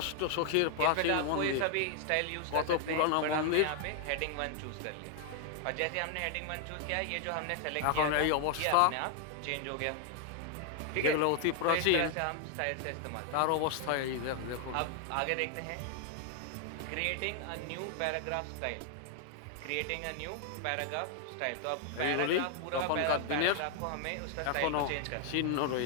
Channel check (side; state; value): both; different; correlation 0.00